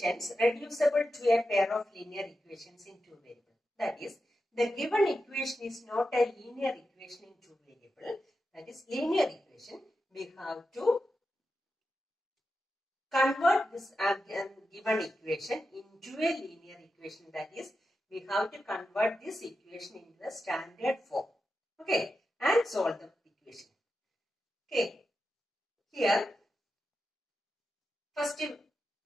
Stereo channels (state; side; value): normal; both; correlation 0.90